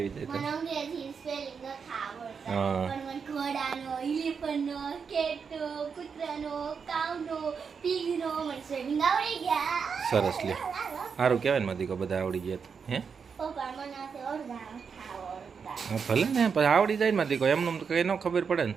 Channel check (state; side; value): quieter; left; 6.0 dB